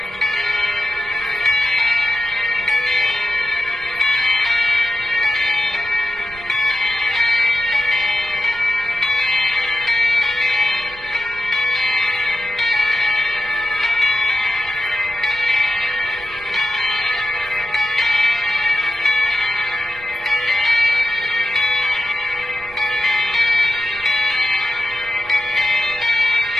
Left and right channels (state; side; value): noise; right; rumble, 21 dB below the sound